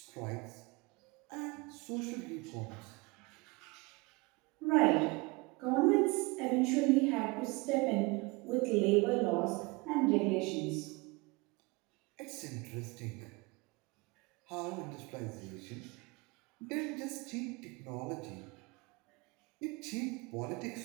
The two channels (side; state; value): left; quieter; 25.8 dB